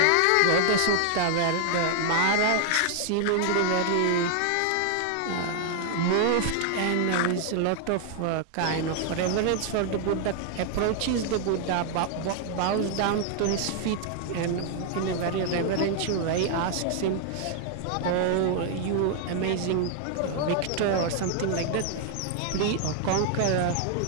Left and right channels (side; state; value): both; different; correlation 0.00